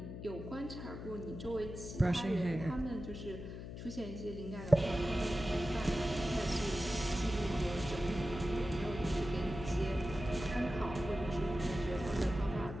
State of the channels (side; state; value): left; noise; hum, 9 dB below the sound